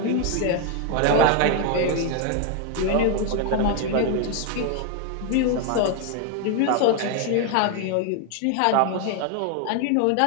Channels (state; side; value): different; both; correlation 0.01